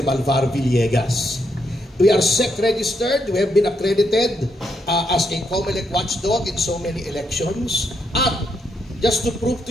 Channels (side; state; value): both; normal; correlation 0.78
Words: Malvar Villegas. We are SEC registered. We have been accredited as a COMELEC watchdog in so many elections. At just to prove to